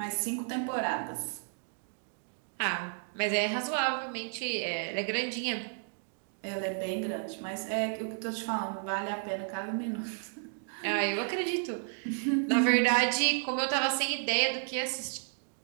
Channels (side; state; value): left; silent; 56 dB below the other